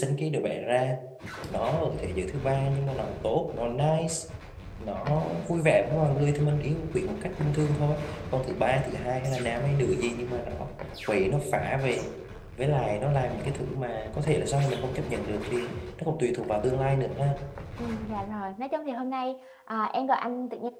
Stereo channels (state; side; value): identical; both; correlation 1.00